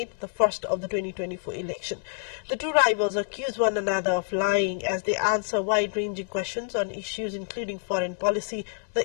the first of the 2024 election. The two rivals accuse one another of lying as they answer wide-ranging questions on issues including foreign policy,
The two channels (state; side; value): silent; right; digital silence